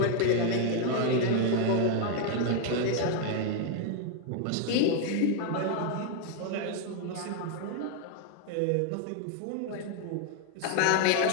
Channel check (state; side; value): different; both; correlation 0.00